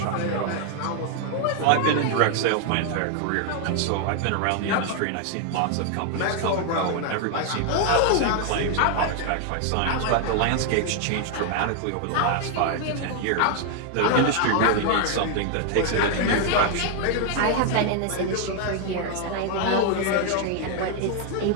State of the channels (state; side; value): different; both; correlation 0.00